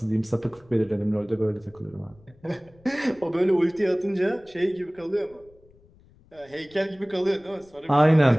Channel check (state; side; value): noise; left; rumble, 28 dB below the sound